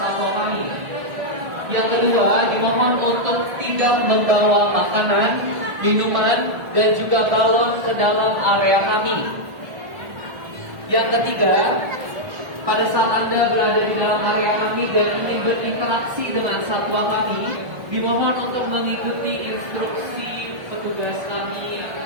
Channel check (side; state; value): left; late; 1.5 ms